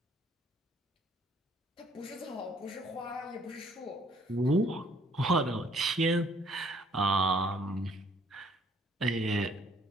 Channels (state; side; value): normal; both; correlation 0.62